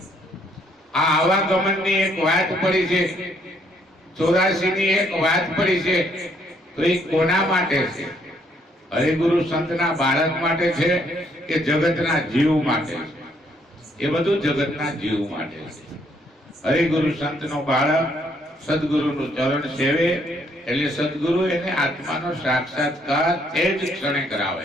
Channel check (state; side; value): normal; both; correlation 0.69